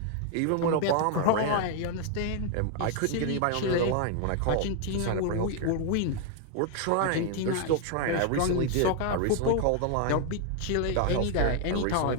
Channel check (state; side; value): different; both; correlation 0.00